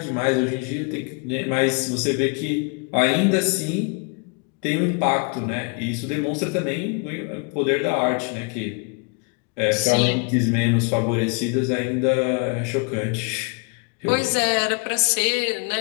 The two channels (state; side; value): quieter; right; 32.7 dB